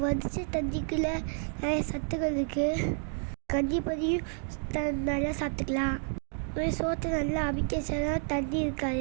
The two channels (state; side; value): silent; left; 56 dB below the other